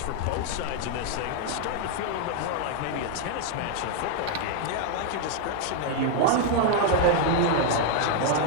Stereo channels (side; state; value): both; different; correlation 0.00